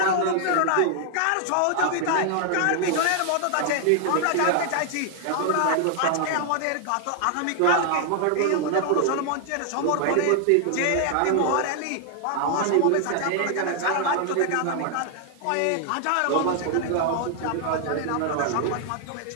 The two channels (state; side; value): different; both; correlation 0.00